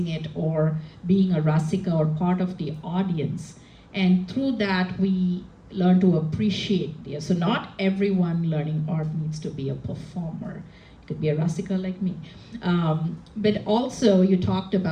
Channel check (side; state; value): both; identical; correlation 1.00